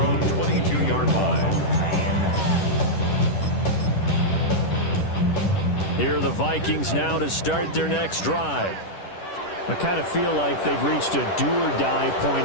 22-yard line. Here are the Vikings now to start their next drive. I kind of feel like they've reached a do-or-die point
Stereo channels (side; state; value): right; late; 10 ms